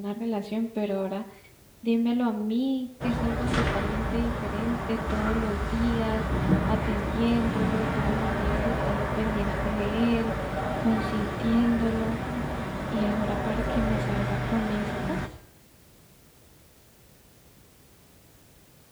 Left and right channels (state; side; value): identical; both; correlation 1.00